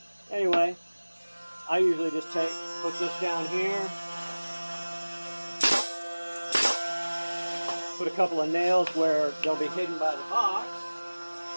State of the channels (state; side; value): inverted; both; correlation -1.00